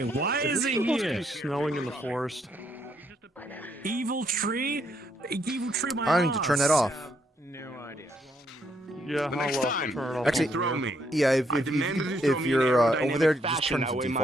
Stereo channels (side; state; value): both; normal; correlation 0.73